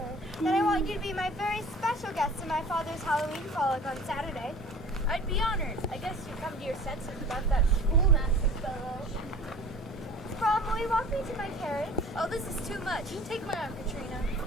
Then I want you to be my very special guest to my father's Halloween frolic on Saturday. I'd be honored. I guess you come to your senses about that schoolmaster fellow. Brom, will you walk me to my carriage? Oh, this is too much. Take my arm, Katrina.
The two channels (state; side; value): normal; both; correlation 0.45